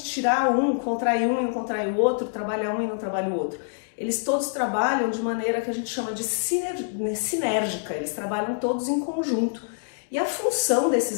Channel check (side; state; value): right; silent; digital silence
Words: tirar um, contrair um e não contrair o outro, trabalhar um e não trabalhar o outro. Eles todos trabalham de maneira que a gente chama de sinérgica, eles trabalham todos em conjunto. E a função